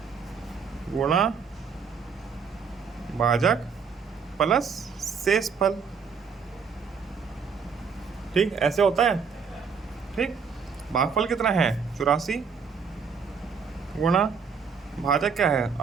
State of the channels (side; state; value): left; quieter; 5.9 dB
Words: गुणा भाजक प्लस शेषफल, ठीक, ऐसे होता है, ठीक। भागफल कितना है? 84 गुणा भाजक क्या है?